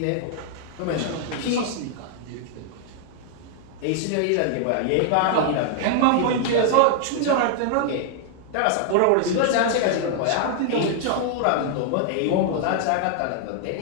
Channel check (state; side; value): different; both; correlation -0.01